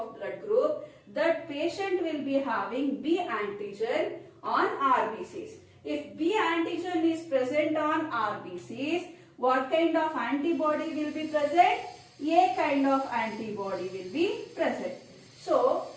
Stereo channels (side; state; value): both; identical; correlation 1.00